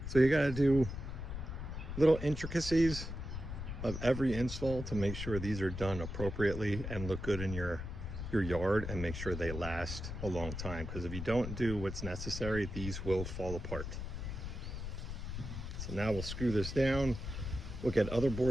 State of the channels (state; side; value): noise; left; rumble, 6 dB below the sound